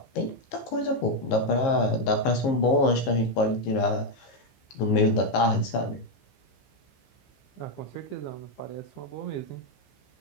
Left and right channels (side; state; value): right; late; 15 ms